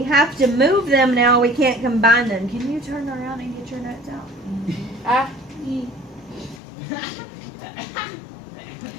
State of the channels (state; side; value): drops out; right; at 6.6 s